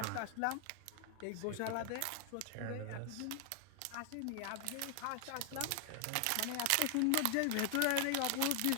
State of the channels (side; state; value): both; different; correlation 0.00